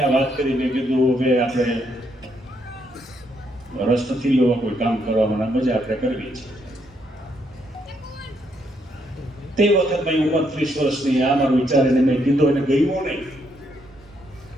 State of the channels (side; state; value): both; normal; correlation 0.75